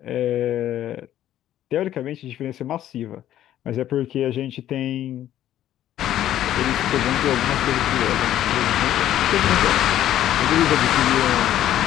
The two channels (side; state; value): right; quieter; 12.2 dB